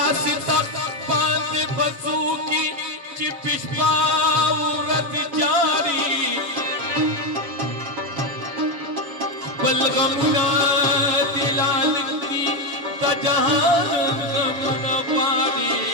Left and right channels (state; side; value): late; left; 7.2 ms